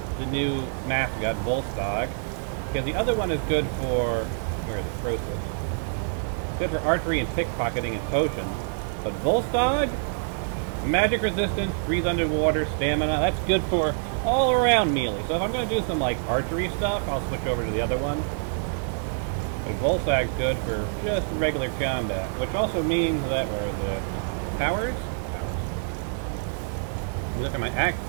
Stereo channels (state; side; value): silent; left; digital silence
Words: the new mascot, Volstagg, because the other one is good for... where is it? Croesus. Good for archery and pickpocketing and potions. But Volstagg? Magic resistance, breathe underwater, stamina, that's good for all-around melee. So if I'm going to do some, like, archery stuff, I'll switch over to the other one. But Volstagg's good for just regular combat, which also means that, where are the powers? Look at my